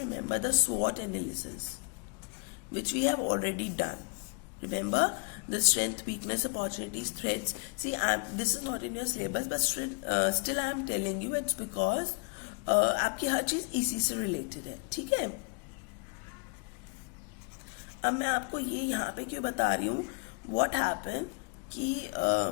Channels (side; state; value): right; quieter; 35.2 dB